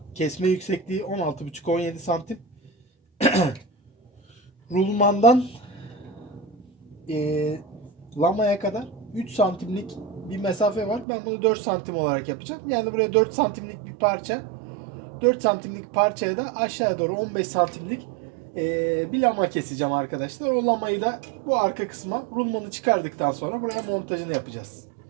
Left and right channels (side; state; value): left; drops out; at 11.1 s